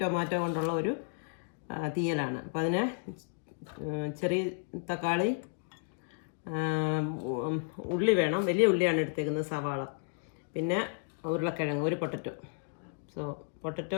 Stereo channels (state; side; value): silent; right; digital silence